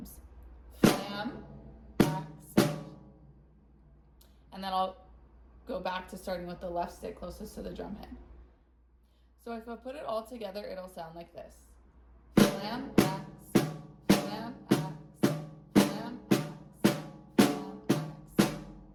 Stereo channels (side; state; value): both; identical; correlation 1.00